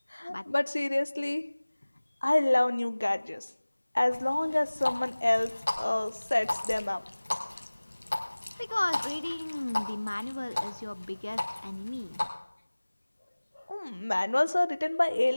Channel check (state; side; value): inverted; both; correlation -1.00